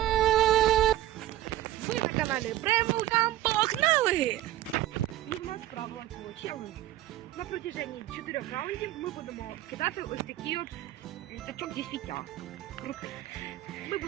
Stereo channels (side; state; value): left; quieter; 14.3 dB